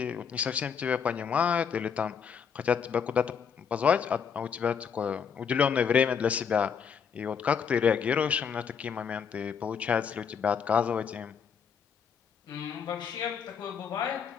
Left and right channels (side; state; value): right; quieter; 6.9 dB